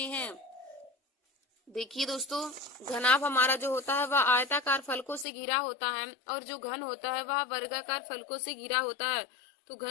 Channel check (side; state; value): right; drops out; at 5.2 s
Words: हैं। देखिए दोस्तों, घनाभ हमारा जो होता है वह आयताकार फलकों से घिरा होता है और जो घन होता है वह वर्गाकार फलकों से घिरा होता है। तो